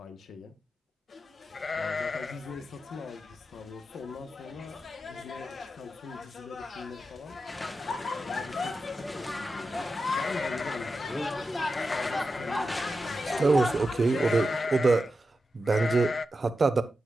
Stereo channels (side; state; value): both; normal; correlation 0.90